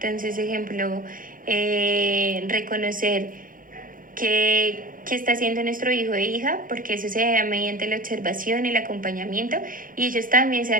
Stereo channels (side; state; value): left; late; 0.40 ms